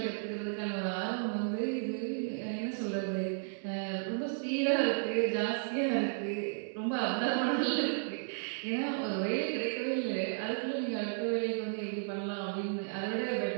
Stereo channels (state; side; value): silent; left; 55 dB below the other